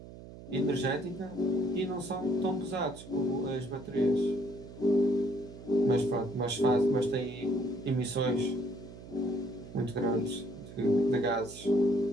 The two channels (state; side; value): noise; right; hum, 15 dB below the sound